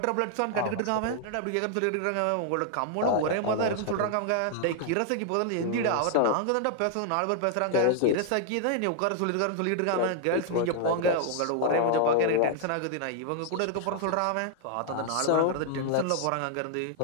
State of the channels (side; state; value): both; different; correlation 0.00